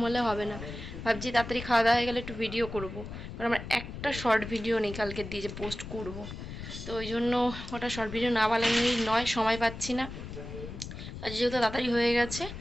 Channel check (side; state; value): left; noise; rumble, 10 dB below the sound